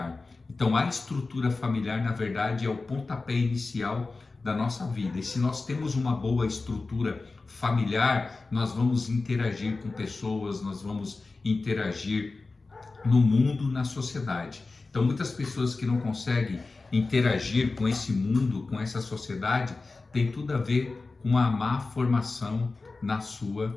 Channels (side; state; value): right; quieter; 3.7 dB